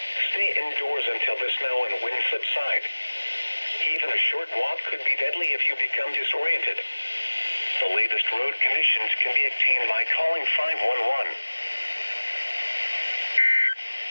Stay indoors until the snow and wind subside. Even a short walk could be deadly if you become disoriented. The latest road conditions can be obtained by calling 511.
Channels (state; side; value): inverted; both; correlation -1.00